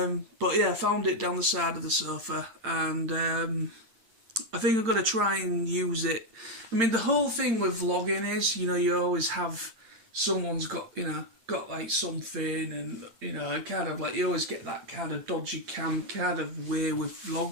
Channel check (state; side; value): late; left; 8.8 ms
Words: But yeah, I found it down the side of the sofa, and I think I'm going to try and use it. I mean, the whole thing with vlogging is, you know, you always have someone's got, you know, got like something, and, you know, kind of like you always get that kind of dodgy cam kind of way with